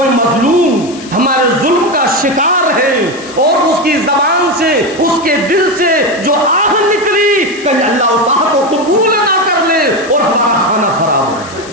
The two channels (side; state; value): left; noise; hiss, 17 dB below the sound